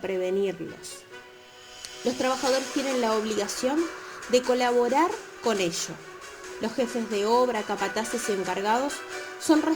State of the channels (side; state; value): both; identical; correlation 1.00